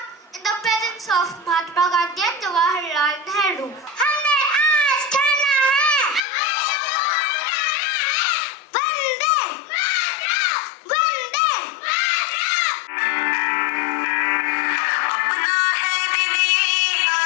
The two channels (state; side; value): drops out; right; at 6.2 s